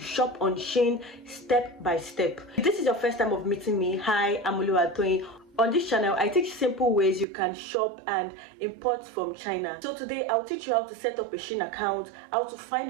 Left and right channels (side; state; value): left; drops out; at 7.2 s